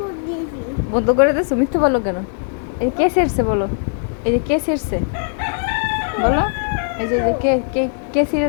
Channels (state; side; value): silent; right; digital silence